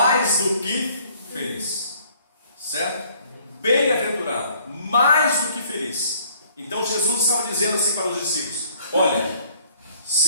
do que feliz, certo? Bem-aventurado, mais do que feliz. Então Jesus estava dizendo assim para os discípulos: olha,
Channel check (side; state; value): both; inverted; correlation -0.59